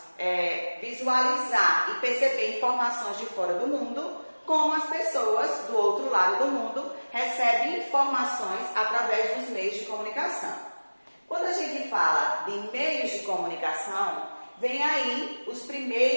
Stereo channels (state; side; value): inverted; both; correlation -1.00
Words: visualizar e perceber informações de fora do mundo, como as pessoas do outro lado do mundo recebem informações através dos meios de comunicação. Quando a gente fala de meios de comunicação, vem aí os